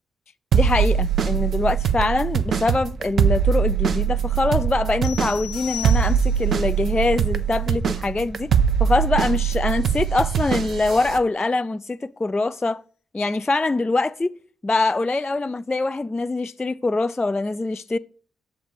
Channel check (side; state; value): both; normal; correlation 0.71